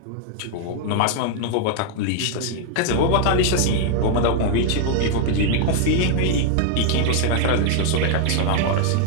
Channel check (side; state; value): both; different; correlation 0.00